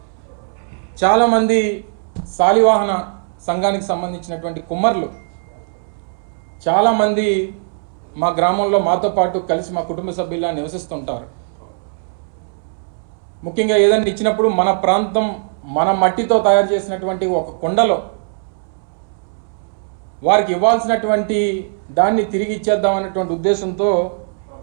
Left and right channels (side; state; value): left; silent; 66 dB below the other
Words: చాలామంది శాలివాహన సంఘానికి సంబంధించినటువంటి కుమ్మర్లు చాలామంది మా గ్రామంలో మాతో పాటు కలిసి మా కుటుంబ సభ్యులా నివసిస్తుంటారు. ముఖ్యంగా ఏదైనా ఇచ్చినప్పుడు మన ప్రాంతం మన మట్టితో తయారు చేసినటువంటి ఒక కుండలో వారికి ఇవ్వాల్సినటువంటి దాన్ని తిరిగి ఇచ్చేద్దామనేటువంటి ఉద్దేశంతో